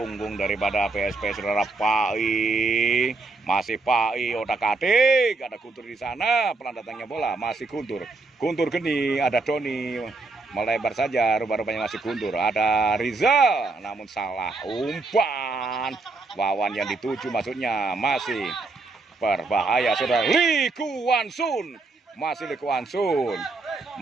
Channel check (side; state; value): left; quieter; 3.5 dB